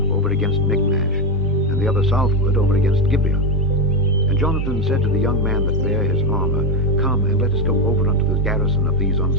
over against Michmash, and the other southward, over against Gibeah. And Jonathan said to the young man that bare his armor, Come, and let us go over unto the garrison of these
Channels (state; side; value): normal; both; correlation 0.09